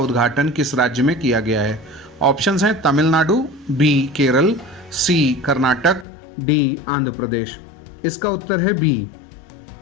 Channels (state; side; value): drops out; right; at 6.1 s